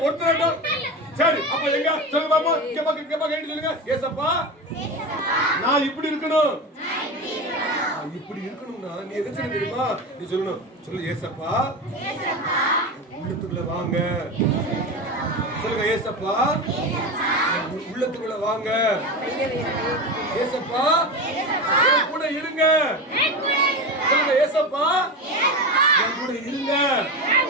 ஒருத்தராட்டம். சரி அப்ப எங்க சொல்லுங்க பாப்பா. கேப்பா கேட்டு சொல்லுங்க. ஏசப்பா நான் இப்படி இருக்கணும். இப்படி இருக்கணும்னா நீ எதை செய்ய தெரியுமா? நீ சொல்லணும். சொல்லு, ஏசப்பா உள்ளத்துக்குள்ள வாங்க. சொல்லுங்க, ஏசப்பா உள்ளத்துக்குள்ள வாங்க. ஏசப்பா கூட இருங்க. சொல்லுங்க, ஏசப்பா என் கூட இருங்க.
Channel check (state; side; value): normal; both; correlation 0.23